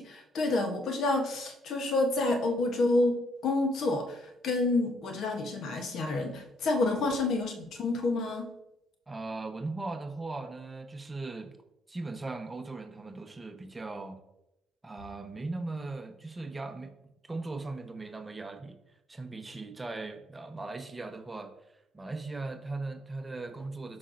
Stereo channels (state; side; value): normal; both; correlation 0.70